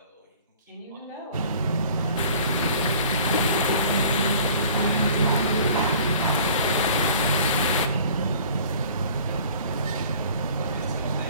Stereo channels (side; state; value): both; inverted; correlation -0.49